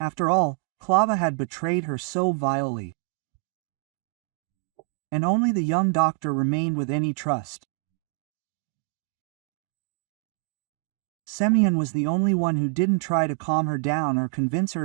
all, Klava had betrayed her so vilely. And only the young doctor remained with any trust. Semyon was the only one who didn't try to calm her down or convince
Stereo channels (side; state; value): left; quieter; 31.4 dB